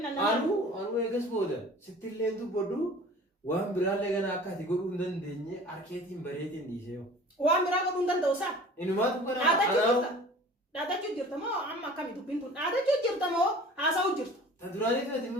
أنو إيجاس بودا ستيلين تو بدو وهم برالة كنا أكاد يقولون دن دنيا أركيتين بريتين ديسيو وان برا كنا دن دوسا إنه ما تبغى أنا ada jujur tamo amma kami tu pintun ada jujur tamo asa ujur tadurani tu timi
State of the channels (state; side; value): normal; both; correlation 0.44